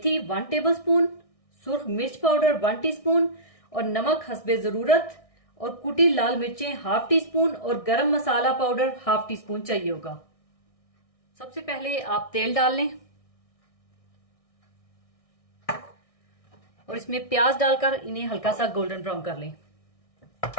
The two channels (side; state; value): right; late; 1.6 ms